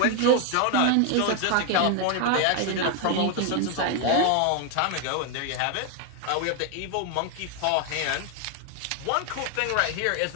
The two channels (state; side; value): different; both; correlation 0.01